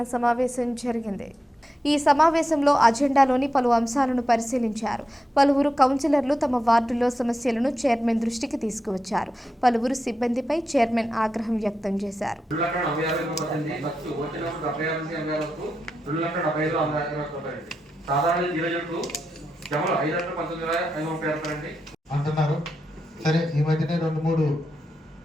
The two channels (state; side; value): normal; both; correlation 0.87